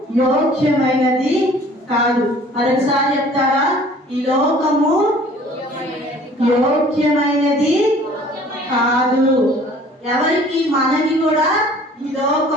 యోగ్యమైనది కాదు. మరొకసారి చెప్తారా? ఈ లోకము యోగ్యమైనది కాదు. ఎవరికి? మనకి కూడా ఈ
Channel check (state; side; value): normal; both; correlation 0.51